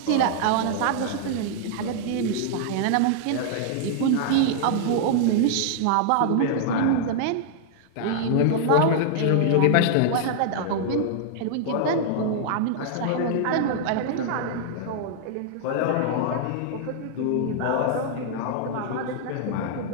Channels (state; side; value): different; both; correlation -0.01